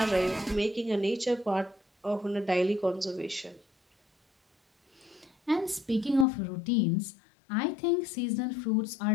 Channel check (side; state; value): right; drops out; at 6.2 s